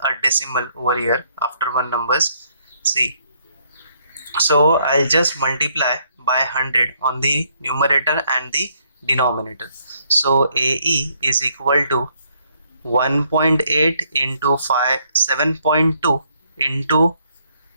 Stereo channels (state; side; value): inverted; both; correlation -0.70